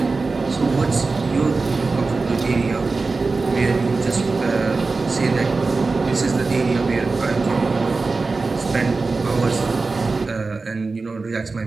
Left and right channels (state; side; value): quieter; left; 3.9 dB